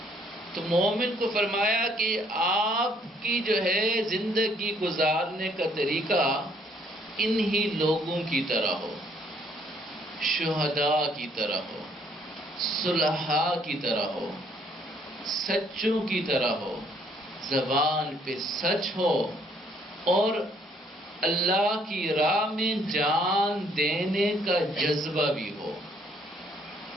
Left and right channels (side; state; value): both; normal; correlation 0.65